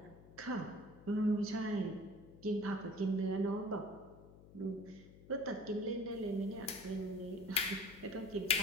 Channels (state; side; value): noise; left; hum, 20 dB below the sound